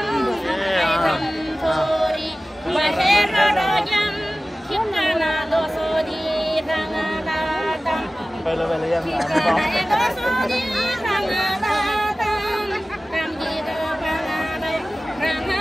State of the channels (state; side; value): normal; both; correlation 0.97